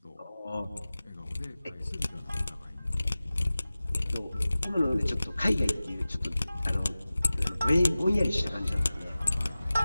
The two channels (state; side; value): inverted; both; correlation -0.97